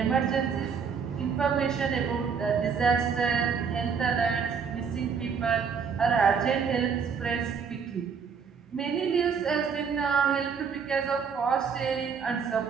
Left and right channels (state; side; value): quieter; left; 6.3 dB